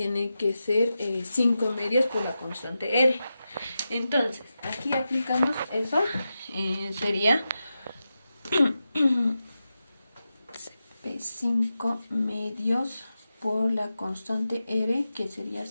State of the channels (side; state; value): both; inverted; correlation -0.91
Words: que ser 5 medios por la constante R. Entonces, aquí aplicamos eso, sería 5 medios por la constante R, que sería